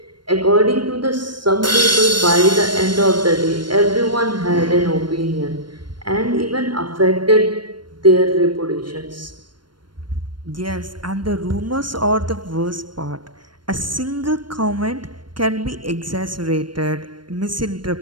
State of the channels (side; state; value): left; late; 0.72 ms